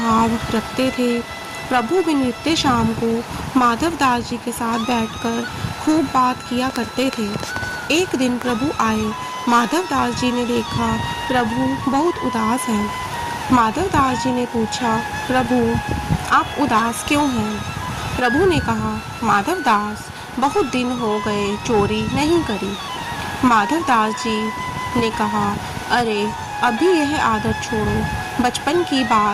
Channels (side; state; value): both; identical; correlation 1.00